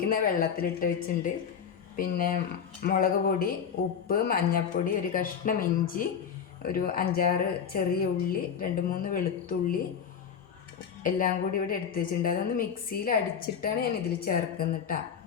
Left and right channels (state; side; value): quieter; right; 7.4 dB